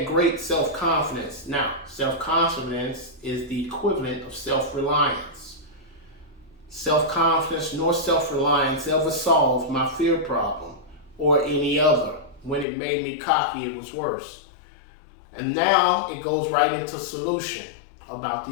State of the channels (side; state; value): right; drops out; at 12.7 s